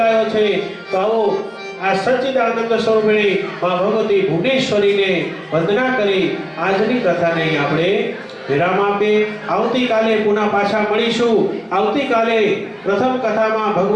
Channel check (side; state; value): both; identical; correlation 1.00